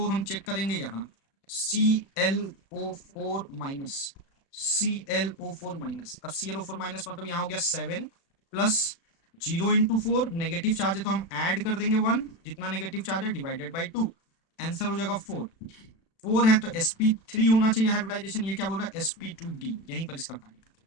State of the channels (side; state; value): right; late; 36 ms